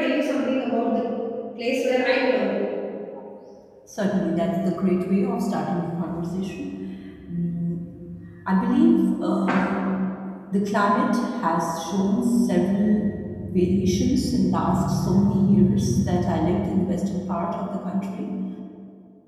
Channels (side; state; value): both; identical; correlation 1.00